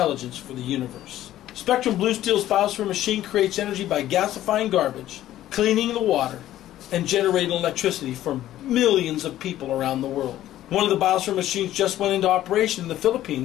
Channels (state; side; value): quieter; right; 13.4 dB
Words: for the universe. Spectrum Blue Steel's biosphere machine creates energy by gasifying garbage, cleaning the water, and generating electricity for millions of people around the world. One of the biosphere machines just went into operation in the